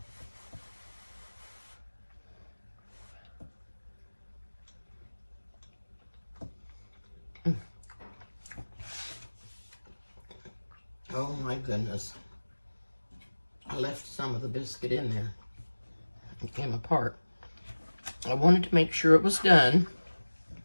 Oh my goodness. I left some of the biscuit in there. It came apart. I wanted to make sure it was done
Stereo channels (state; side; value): inverted; both; correlation -1.00